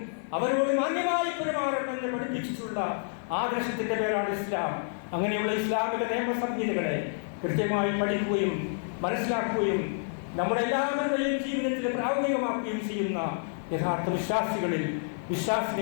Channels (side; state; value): right; silent; 59 dB below the other